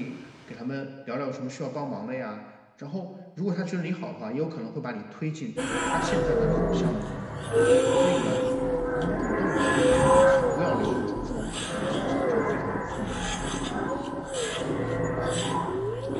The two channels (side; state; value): both; identical; correlation 1.00